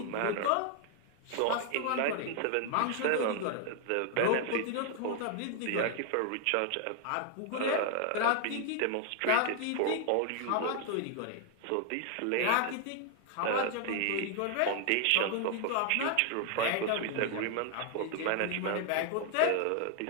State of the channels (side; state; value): both; different; correlation 0.00